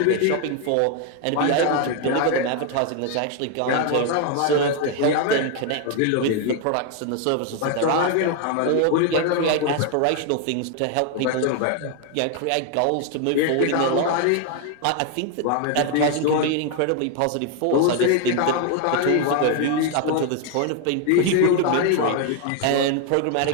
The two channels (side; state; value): both; different; correlation 0.01